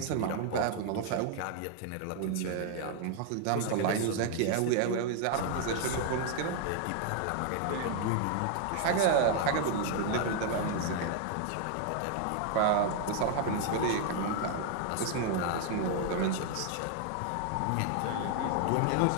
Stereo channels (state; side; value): different; both; correlation 0.00